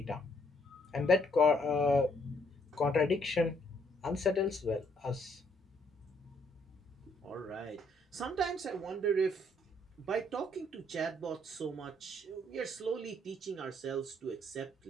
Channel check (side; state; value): both; normal; correlation 0.68